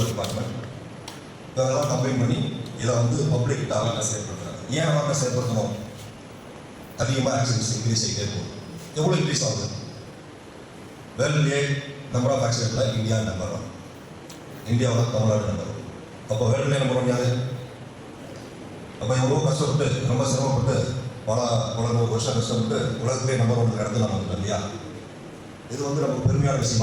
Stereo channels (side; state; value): both; identical; correlation 1.00